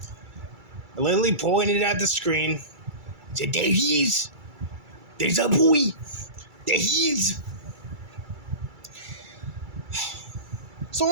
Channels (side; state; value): left; late; 2.3 ms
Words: Lily pointed at the screen. Said, "There he is. There's a boy. There he is." So